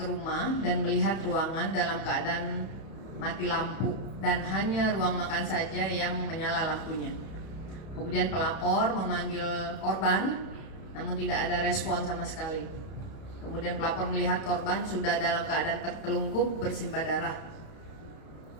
rumah dan melihat ruangan dalam keadaan mati lampu dan hanya ruang makan saja yang menyala lampunya. Kemudian pelapor memanggil korban namun tidak ada respon sama sekali. Kemudian pelapor melihat korban sudah dalam keadaan tertelungkup bersimbah darah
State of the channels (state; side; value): late; right; 31 ms